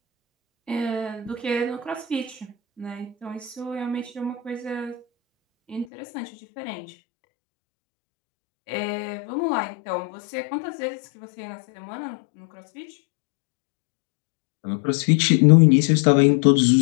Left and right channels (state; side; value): drops out; right; at 5.9 s